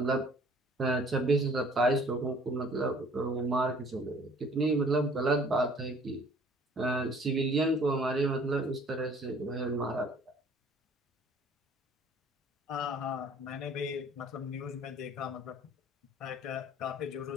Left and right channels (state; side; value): normal; both; correlation 0.54